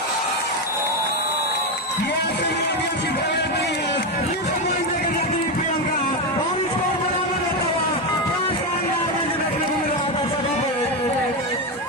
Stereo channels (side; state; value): both; normal; correlation 0.11